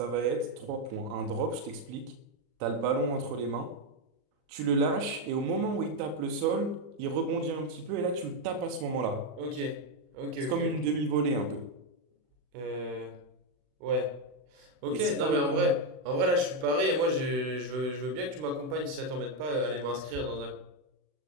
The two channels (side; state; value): left; late; 39 ms